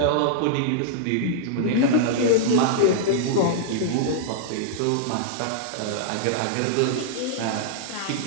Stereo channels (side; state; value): both; different; correlation -0.01